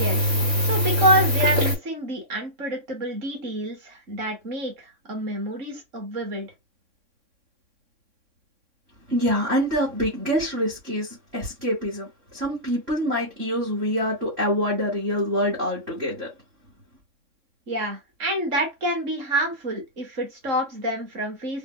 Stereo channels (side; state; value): left; late; 3.6 ms